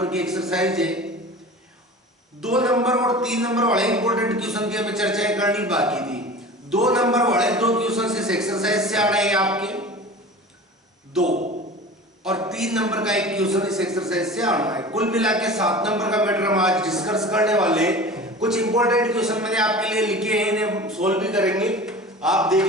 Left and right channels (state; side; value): normal; both; correlation 0.37